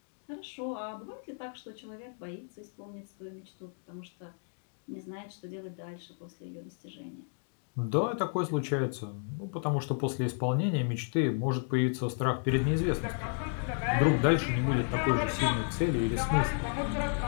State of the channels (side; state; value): right; silent; 56 dB below the other